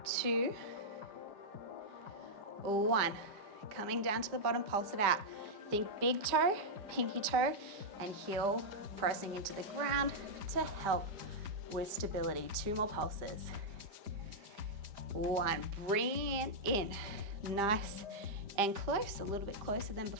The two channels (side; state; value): left; late; 5.0 ms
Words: 2, 1. Coming down to the bottom, pulse it out. Think big toe, pinky toe, and heel pressing into the ground to help with stability. 2 more pulses. 1, bring it in. Nice and close, a little bit closer than